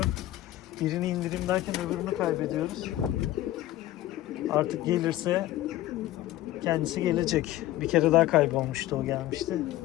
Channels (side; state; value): right; quieter; 15.1 dB